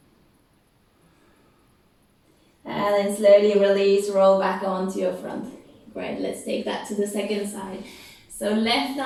And then slowly release, roll back onto your front. Great, let's take that to the second side. So left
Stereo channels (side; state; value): both; identical; correlation 1.00